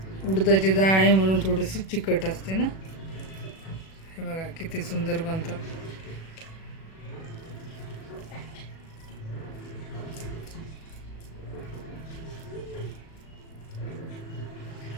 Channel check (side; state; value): right; late; 37 ms